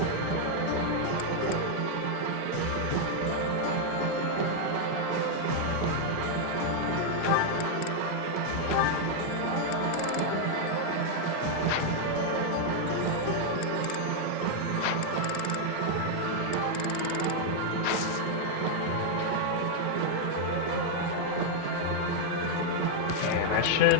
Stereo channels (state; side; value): different; both; correlation 0.00